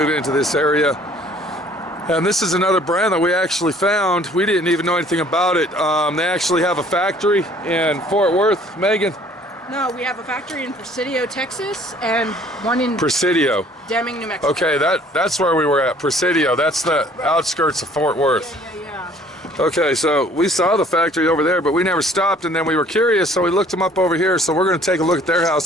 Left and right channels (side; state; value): both; normal; correlation 0.56